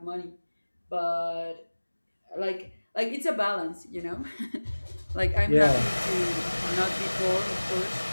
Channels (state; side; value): inverted; both; correlation -1.00